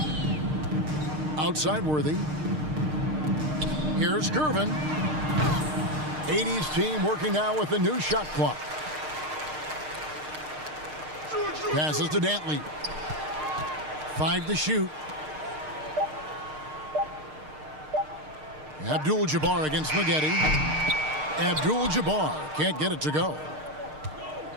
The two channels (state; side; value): late; left; 6.5 ms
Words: Outside Worthy. Here's Gervin. 80's team working now with the new shot clock. Passes to Dantley. 5 to shoot. Abdul-Jabbar against Maggette. Abdul-Jabbar can't get it to go.